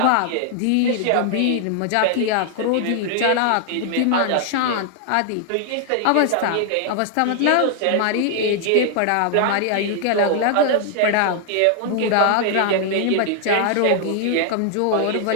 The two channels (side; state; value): both; different; correlation 0.00